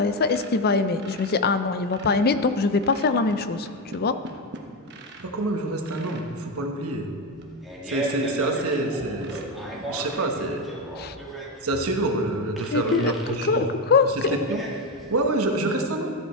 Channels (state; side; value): normal; both; correlation 0.11